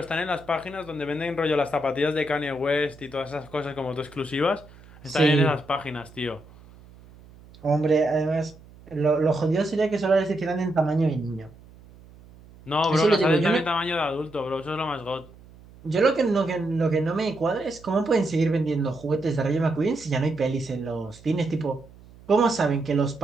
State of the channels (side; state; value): right; noise; hum, 23 dB below the sound